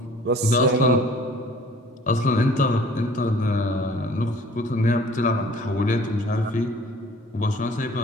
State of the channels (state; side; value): normal; both; correlation 0.51